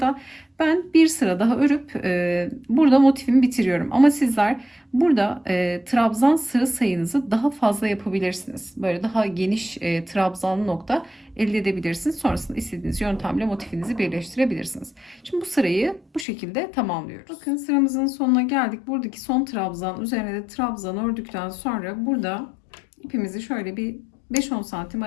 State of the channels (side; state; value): right; drops out; at 16.2 s